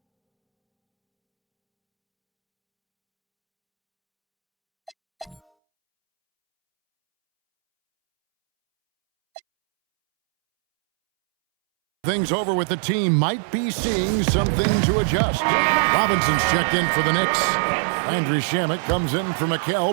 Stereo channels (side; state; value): left; drops out; at 5.4 s